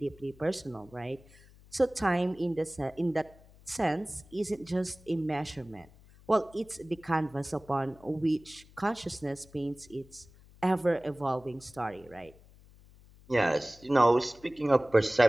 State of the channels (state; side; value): noise; left; hum, 24 dB below the sound